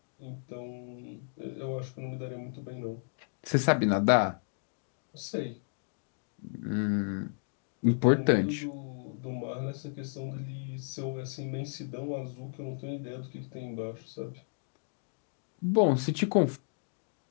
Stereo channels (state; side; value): silent; right; digital silence